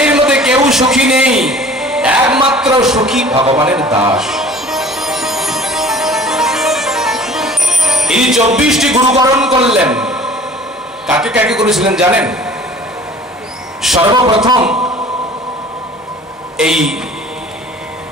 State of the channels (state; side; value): normal; both; correlation 0.47